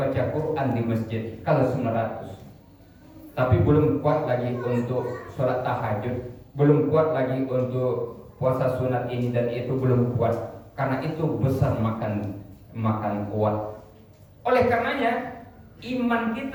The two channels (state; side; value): identical; both; correlation 1.00